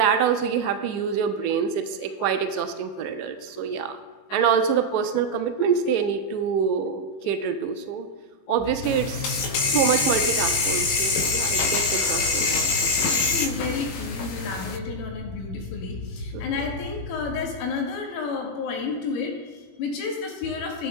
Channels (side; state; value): right; late; 21 ms